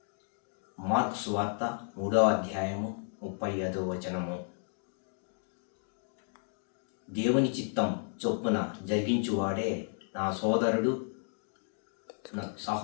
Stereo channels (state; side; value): silent; right; 56 dB below the other